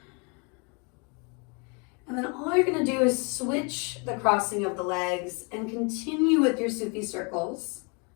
And then all you're going to do is switch the crossing of the legs and continue with your Sufi circles.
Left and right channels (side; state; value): right; quieter; 34.1 dB